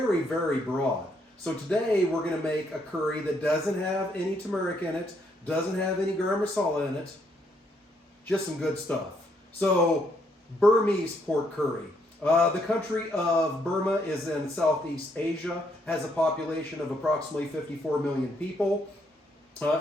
very broad. So today we're going to make a curry that doesn't have any turmeric in it, doesn't have any garam masala in it, just some good stuff. So Burmese pork curry. The country of Burma is in Southeast Asia, has a population of approximately 54 million people.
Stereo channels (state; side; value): normal; both; correlation 0.73